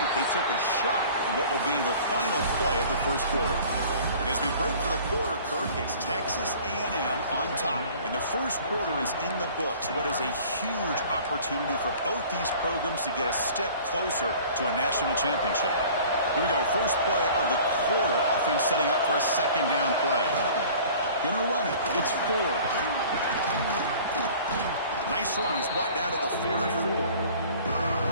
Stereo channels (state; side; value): inverted; both; correlation -0.47